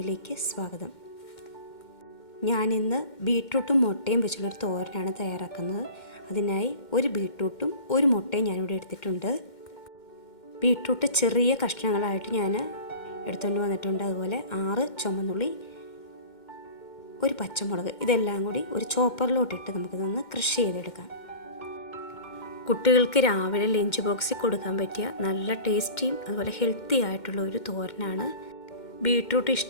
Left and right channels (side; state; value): right; late; 2.1 ms